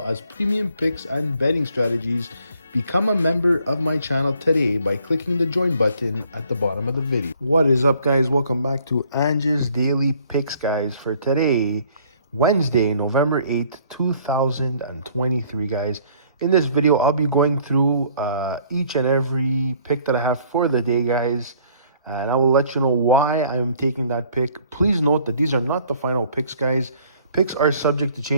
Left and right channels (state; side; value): inverted; both; correlation -0.59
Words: as premium picks and betting strategies, become a member of my channel today by clicking the join button at the bottom of the video. What is up, guys? Welcome back to Ange's Daily Picks, guys, for today, Wednesday, November 8th, 2023, guys. In this video, I'll be going through each and every pick that I have for the day, guys. And I will let you know why I'm taking that pick. Please note that these are not the final picks, guys. Picks are subject to